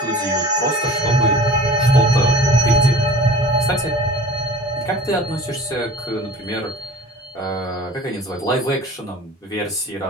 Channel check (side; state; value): both; normal; correlation 0.42